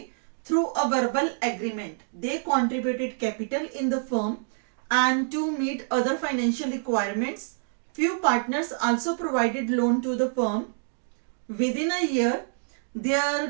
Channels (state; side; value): silent; left; digital silence